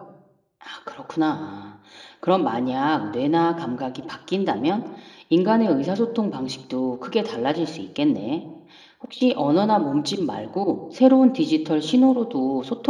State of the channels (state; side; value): identical; both; correlation 1.00